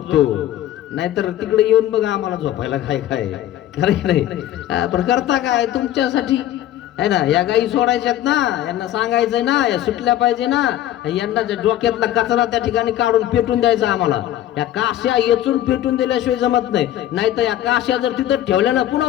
नाहीतर तिकडे येऊन बघा आम्हाला झोपायला काय काय खरं नाही. पण करता काय तुमच्यासाठी, आहे ना? या गाई सोडायच्यात ना, यांना सांगायचंय ना, या सुटल्या पाहिजे ना, यांना डोक्यातला कचरा त्या ठिकाणी काढून पेटून द्यायचा आम्हाला. या काश्या येचून पेटून दिल्याशिवाय जमत नाही. नाहीतर या काश्या जर तिथं ठेवल्या ना पुन्हा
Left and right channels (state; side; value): quieter; right; 12.7 dB